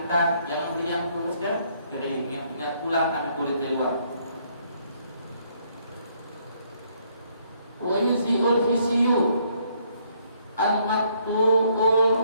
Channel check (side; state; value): both; inverted; correlation -0.68